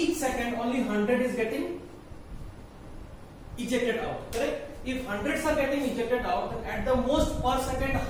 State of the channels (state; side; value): identical; both; correlation 1.00